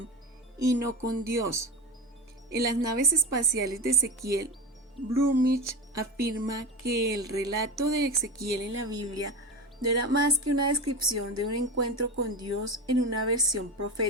y no con Dios. En las naves espaciales de Ezequiel, Blumrich afirma que el relato de Ezequiel en la Biblia no era más que una descripción de un encuentro con Dios en una versión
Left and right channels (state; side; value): normal; both; correlation 0.24